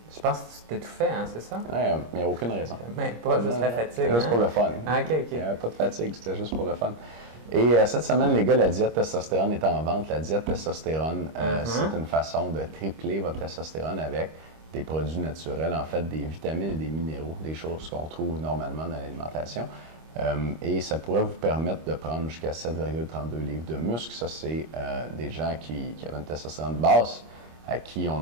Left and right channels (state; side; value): late; left; 25 ms